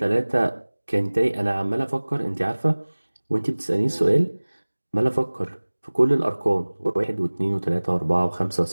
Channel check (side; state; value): both; inverted; correlation -1.00